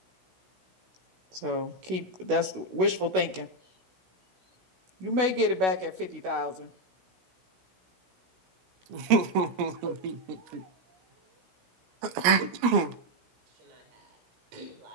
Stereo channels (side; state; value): left; late; 16 ms